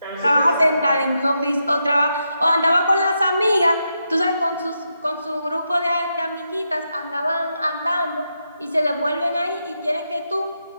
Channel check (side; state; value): both; inverted; correlation -0.84